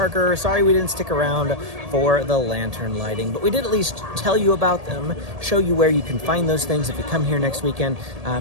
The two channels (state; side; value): late; left; 1.8 ms